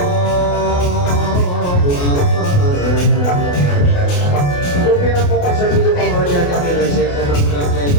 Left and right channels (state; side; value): late; right; 28 ms